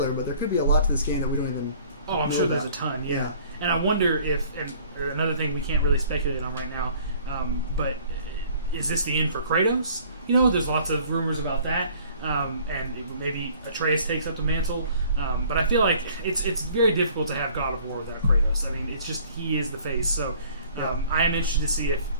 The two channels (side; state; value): both; inverted; correlation -0.54